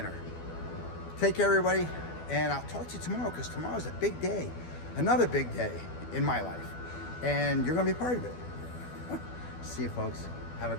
Take care, everybody, and I'll talk to you tomorrow, because tomorrow's a big day, another big day in my life, and you're going to be part of it. See you, folks. Have a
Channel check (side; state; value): right; late; 12 ms